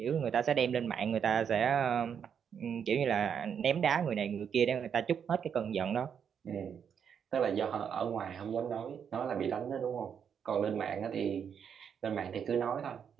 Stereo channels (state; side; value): quieter; left; 7.6 dB